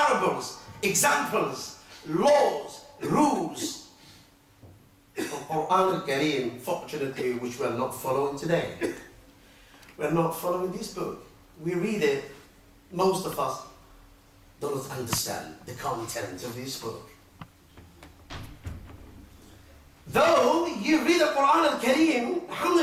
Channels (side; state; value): both; identical; correlation 1.00